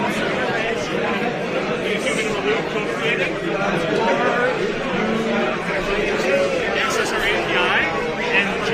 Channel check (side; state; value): both; identical; correlation 1.00